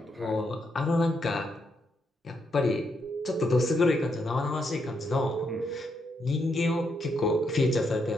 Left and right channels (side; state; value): both; normal; correlation 0.79